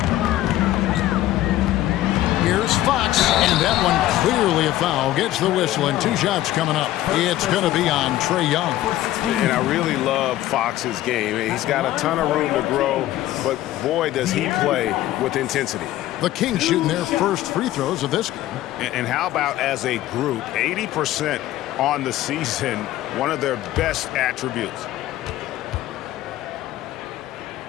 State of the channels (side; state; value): right; quieter; 14.6 dB